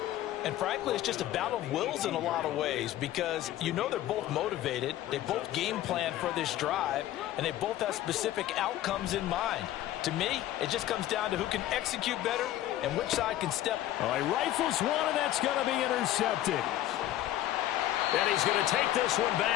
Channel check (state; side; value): quieter; right; 13.6 dB